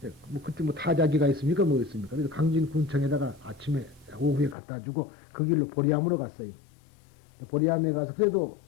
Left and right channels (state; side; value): drops out; right; at 4.5 s